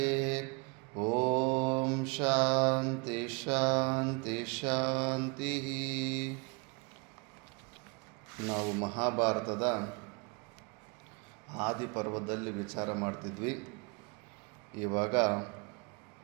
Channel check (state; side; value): quieter; left; 31.6 dB